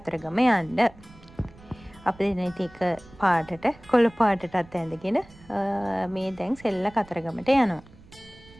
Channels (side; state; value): right; noise; rumble, 23 dB below the sound